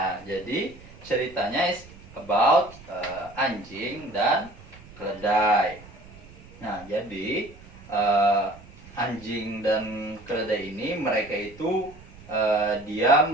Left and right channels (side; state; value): right; noise; rumble, 20 dB below the sound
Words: jadi ceritanya is about anjing dan keledai. Nah, jadi anjing dan keledai ini mereka itu diam